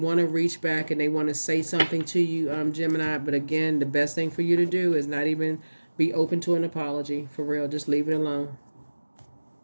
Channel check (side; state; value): both; inverted; correlation -1.00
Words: to reach back and they want to say something to you, Gemini, but again, the best thing for you to do is not even be open to an apology. For real, just leave it alone.